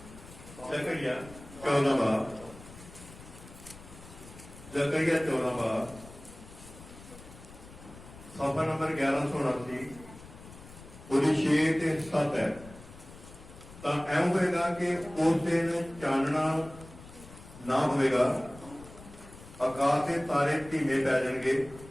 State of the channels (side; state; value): left; noise; rumble, 18 dB below the sound